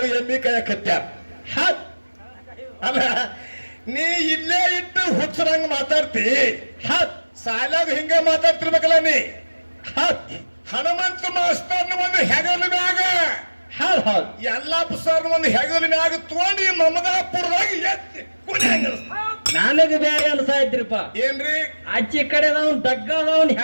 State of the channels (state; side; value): inverted; both; correlation -1.00